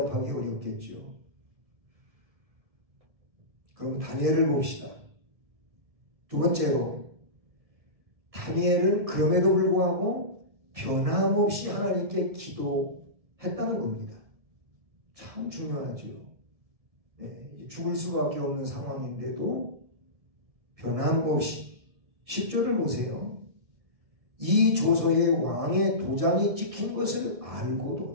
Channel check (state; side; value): late; left; 1.7 ms